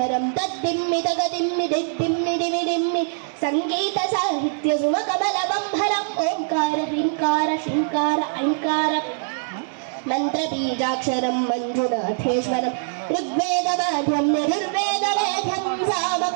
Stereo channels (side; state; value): left; silent; digital silence